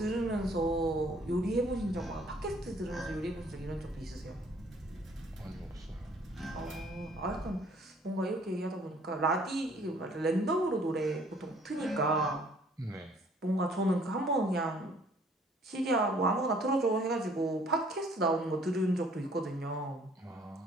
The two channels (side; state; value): both; normal; correlation 0.58